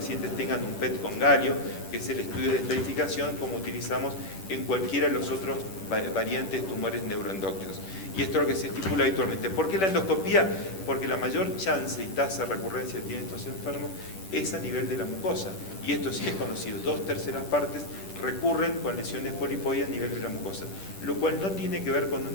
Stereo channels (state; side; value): late; right; 10 ms